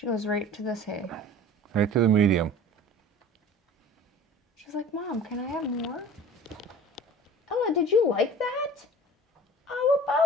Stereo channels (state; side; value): normal; both; correlation 0.42